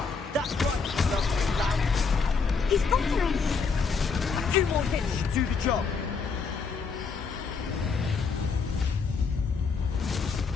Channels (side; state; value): right; quieter; 5.1 dB